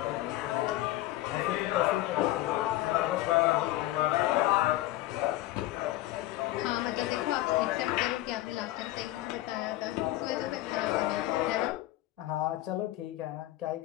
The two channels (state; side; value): quieter; right; 16.1 dB